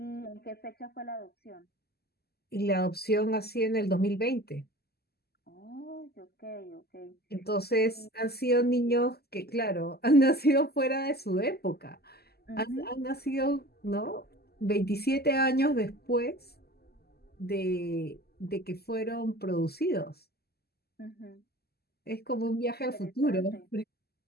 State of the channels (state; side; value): late; right; 0.46 ms